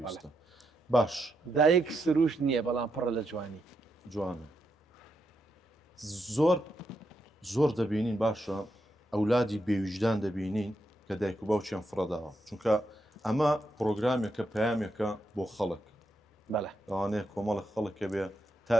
باش دایک سروش نییە بەڵام پڕە لە جوانی جوانە زۆر دەبینین باشە ئەولادی بێویژدان دەبینین کە دایک و باوچیان فڕەداوە چونکە ئەمە پرۆگرامێکە پەیامێکە بۆ خەڵک لەوانەیە کۆمەڵە خەڵکە بێ تا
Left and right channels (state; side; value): normal; both; correlation 0.83